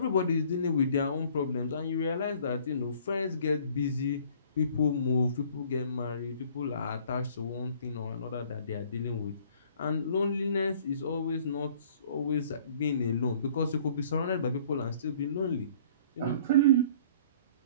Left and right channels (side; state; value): both; inverted; correlation -0.55